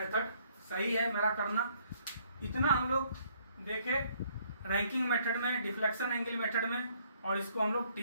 सही है, मेरा करना। इतना हम लोग देखे रैंकिंग मेथड में, डिफ्लेक्शन एंगल मेथड में, और इसको हम लोग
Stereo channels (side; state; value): both; inverted; correlation -0.66